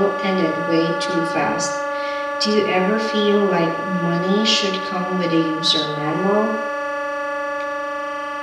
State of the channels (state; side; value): identical; both; correlation 1.00